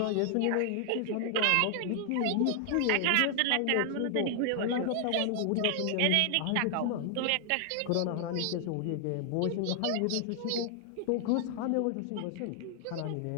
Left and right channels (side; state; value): both; different; correlation 0.00